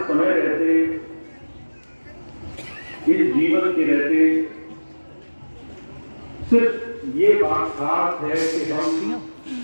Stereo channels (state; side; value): inverted; both; correlation -1.00